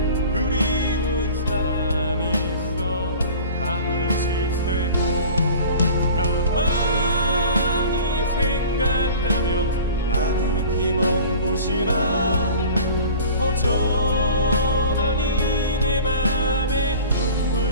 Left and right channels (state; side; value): inverted; both; correlation -0.42